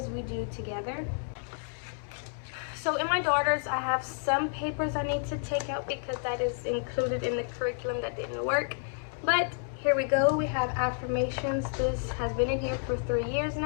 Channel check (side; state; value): right; silent; 58 dB below the other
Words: we do together. So in my daughter's, I have some papers I need to take out because that is included in the curriculum that didn't work. But here we go. We have affirmations. This has been in here for 3 years